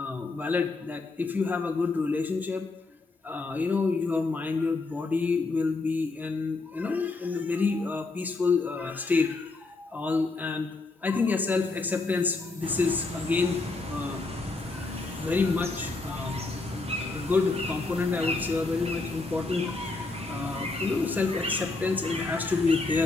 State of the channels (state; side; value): quieter; right; 3.6 dB